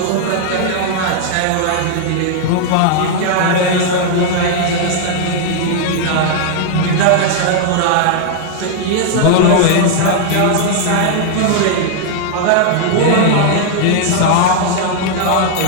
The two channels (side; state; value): both; different; correlation -0.01